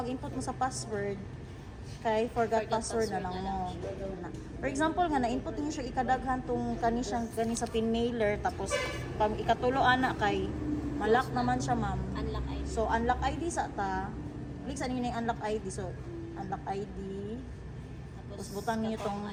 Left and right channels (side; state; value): both; identical; correlation 1.00